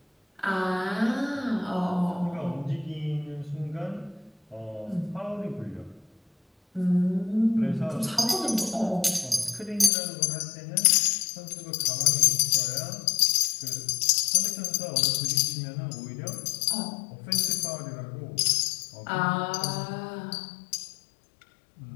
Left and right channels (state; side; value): drops out; right; at 9.9 s